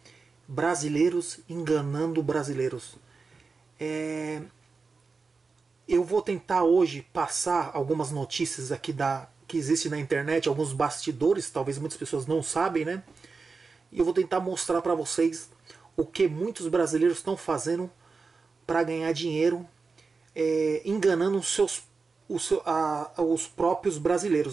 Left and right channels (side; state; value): left; quieter; 4.5 dB